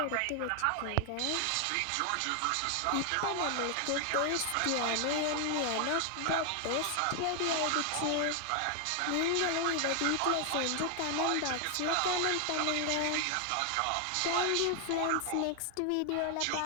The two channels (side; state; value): both; different; correlation 0.00